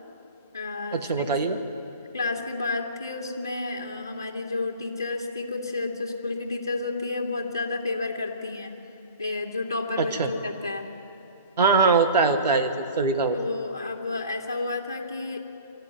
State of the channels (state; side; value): inverted; both; correlation -0.42